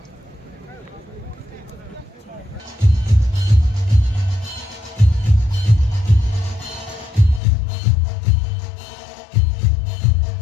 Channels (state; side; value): drops out; right; at 7.4 s